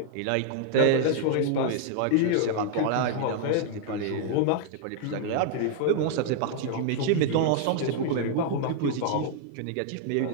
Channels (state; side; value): different; both; correlation 0.00